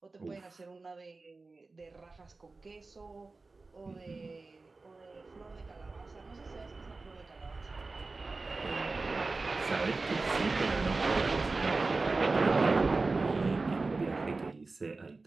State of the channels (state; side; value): quieter; left; 3.7 dB